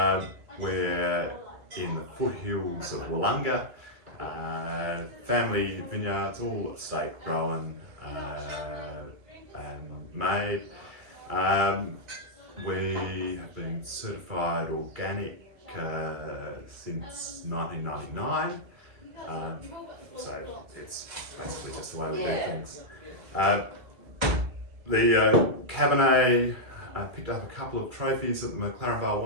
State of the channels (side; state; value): left; late; 2.3 ms